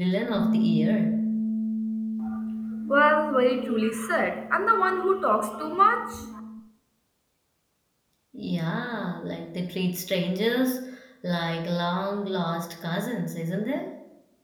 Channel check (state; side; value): identical; both; correlation 1.00